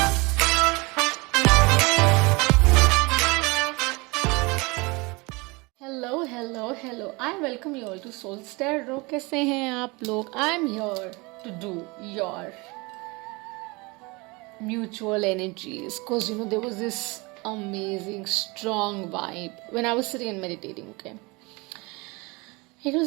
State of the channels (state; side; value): quieter; left; 25.9 dB